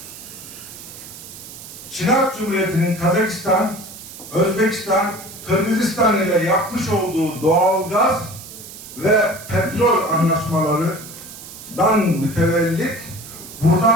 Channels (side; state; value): right; noise; hiss, 15 dB below the sound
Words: Çin Halk Cumhuriyeti'nin Kazakistan, Özbekistan, Kırgızistan ile yapmış olduğu doğalgaz ve petrol anlaşmalarından mütevellit